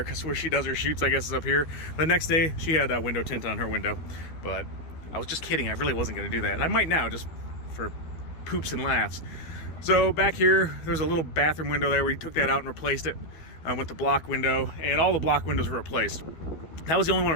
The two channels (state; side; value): late; right; 13 ms